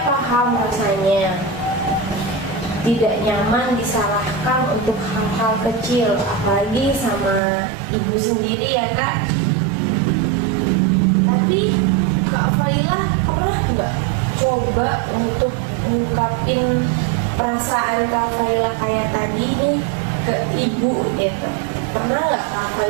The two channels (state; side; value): drops out; left; at 7.4 s